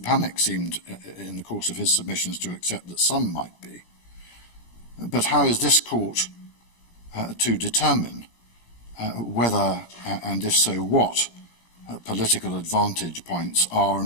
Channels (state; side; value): late; right; 17 ms